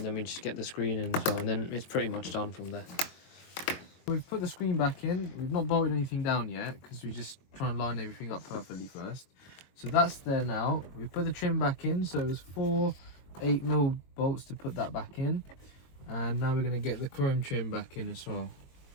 then we just get the screen in as well, and then it's pretty much done from there. We've put the screen back in. We've not bolted anything down yet because we're just trying to line everything up perfectly first. So that's there now. We've put the trim back in, so it was 4 8mm bolts to put that back in, and now we're going to get the chrome trim back in as well.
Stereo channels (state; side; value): late; right; 22 ms